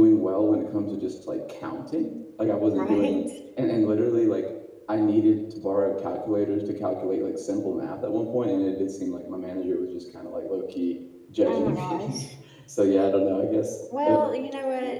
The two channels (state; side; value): identical; both; correlation 1.00